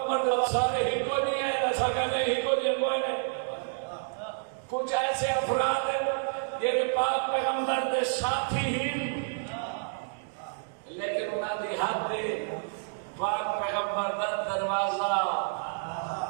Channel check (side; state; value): left; silent; digital silence